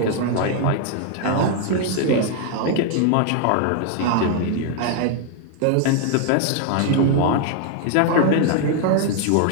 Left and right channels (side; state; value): both; different; correlation 0.00